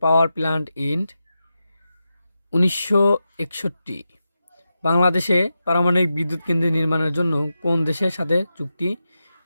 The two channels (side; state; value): both; inverted; correlation -0.90